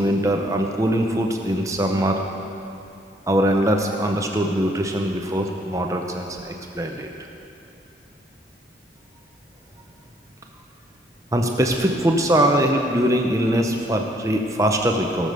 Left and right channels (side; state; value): both; normal; correlation 0.66